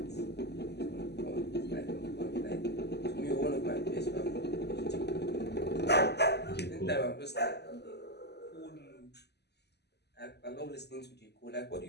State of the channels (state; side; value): late; right; 0.49 ms